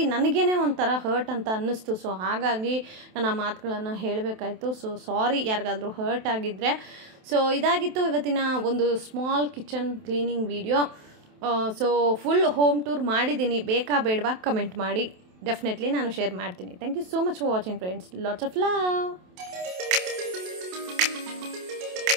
ನನಗೇನೆ ಒಂಥರ ಹರ್ಟ್ ಅಂತ ಅನ್ನಿಸ್ತು. ಸೊ ಹಾಗಾಗಿ ನಾನು ಆ ಮಾತುಗಳನ್ನು ಹೇಳಬೇಕಾಯ್ತು. ಸೊ ಸಾರಿ ಯಾರಿಗಾದರೂ ಹರ್ಟ್ ಆಗಿದ್ದರೆ. ಸೊ ಇದಾಗಿತ್ತು ಇವತ್ತಿನ ಒಂದು small kitchen cleaning video. So full home tour ಮಾಡಿದ್ದೀನಿ, ಬೇಕಾ ಬೇಡವಾ ಕಮೆಂಟ್ ಮಾಡಿ, ಡೆಫಿನೆಟ್ಲಿ ನಾನು ಶೇರ್ ಮಾಡ್ತೀನಿ. Thank you so much for watching friends. Lots of love.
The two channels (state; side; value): late; left; 27 ms